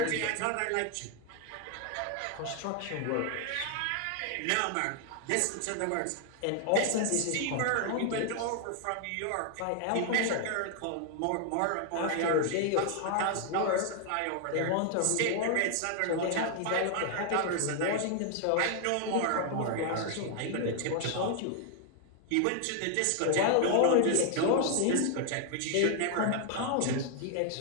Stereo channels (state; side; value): different; both; correlation 0.00